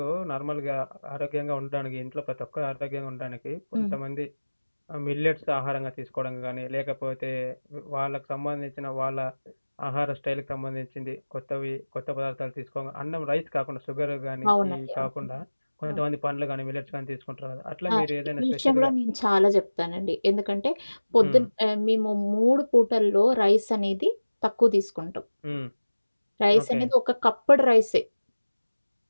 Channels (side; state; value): both; inverted; correlation -1.00